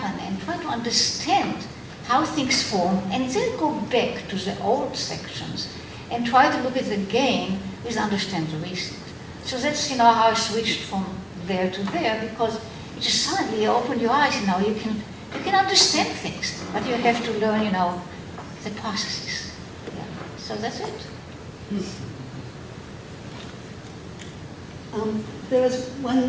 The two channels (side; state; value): both; identical; correlation 1.00